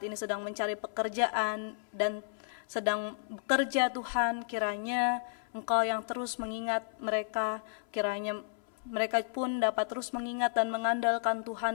ini sedang mencari pekerjaan dan sedang bekerja Tuhan, kiranya Engkau yang terus mengingat mereka, kiranya mereka pun dapat terus mengingat dan mengandalkan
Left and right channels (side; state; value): right; silent; 56 dB below the other